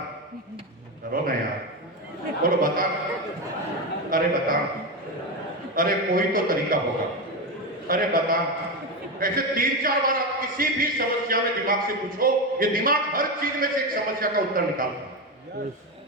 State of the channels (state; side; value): normal; both; correlation 0.15